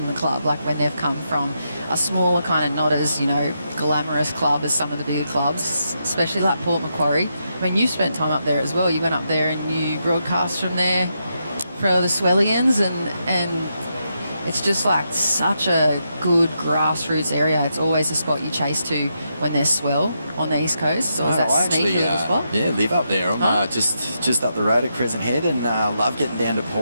the club, like when they've come from a smaller kind of, not as, you know, glamorous club as some of the bigger clubs, especially like Port Macquarie. I mean, you spent time up there as well. You went up there and you broadcast from there for the Swellians, and it's just like such a good grassroots area. It's always a spot you chase to when there's swell on the East Coast. So is that sneaky little spot? Yeah, live up there. I'm just up the road at Crescent Head, and love getting down to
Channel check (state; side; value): inverted; both; correlation -0.82